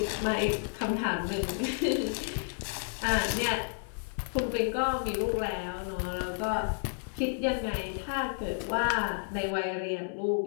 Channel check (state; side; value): silent; right; digital silence